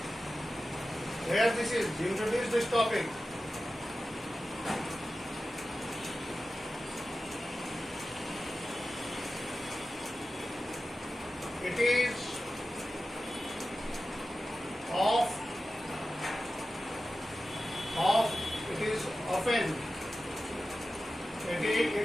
Here this is. You introduce this topic. It is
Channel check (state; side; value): normal; both; correlation 0.94